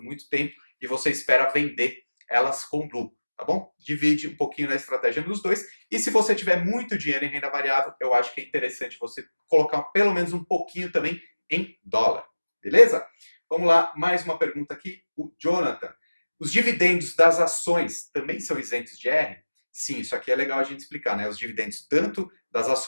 muito tempo e você espera vender elas com lucro, tá bom? Divide um pouquinho na estratégia nos dois. E se você tiver muito dinheiro em renda variável, eu acho que é interessante você colocar pelo menos um pouquinho também em dólar, beleza? Vamos lá, mais uma pergunta aqui. O Jonathan. Os dividendos das ações também são isentos de R? Sim, isso aqui é legal a gente explicar, né? Os dividendos tanto das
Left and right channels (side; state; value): both; inverted; correlation -1.00